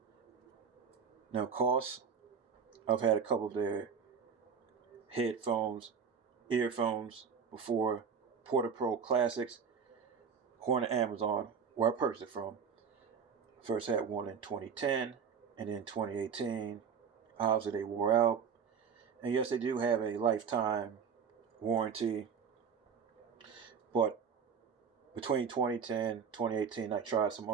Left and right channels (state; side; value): quieter; left; 6.7 dB